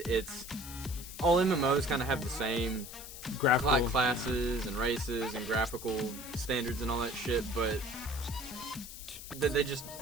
It's all MMOs kind of have the same graphical classes and races and graphical standards and all that shit, but they just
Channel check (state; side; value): noise; left; hiss, 12 dB below the sound